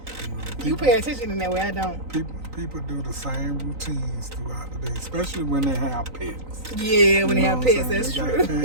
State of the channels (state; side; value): late; left; 3.9 ms